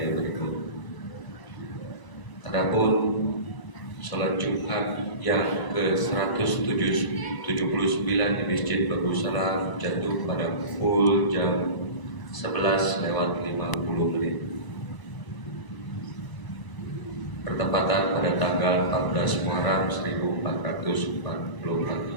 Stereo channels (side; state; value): right; late; 1.0 ms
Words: berikut. Adapun sholat Jumat yang ke-179 di Masjid Darussalam jatuh pada pukul jam 11:50 bertepatan pada tanggal 14 Muharram